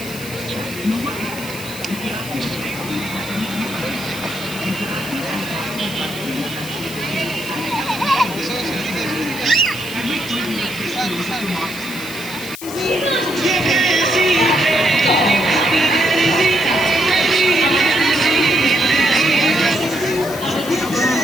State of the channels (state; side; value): noise; left; hiss, 12 dB below the sound